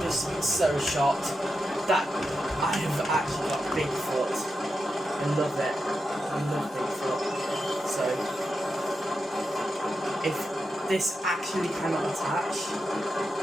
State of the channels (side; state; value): both; normal; correlation 0.88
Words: just so shocked that I have actually got Bigfoot. I love it. I love Bigfoot. So if this actually cannot attach,